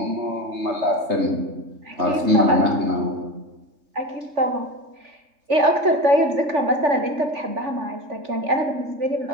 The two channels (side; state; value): left; late; 3.4 ms